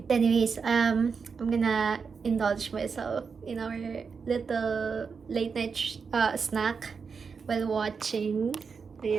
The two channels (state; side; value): quieter; left; 5.6 dB